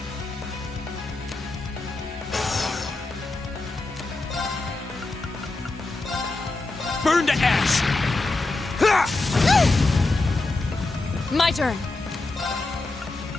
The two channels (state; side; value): quieter; right; 3.2 dB